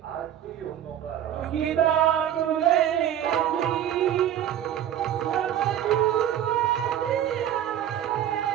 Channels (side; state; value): left; quieter; 10.8 dB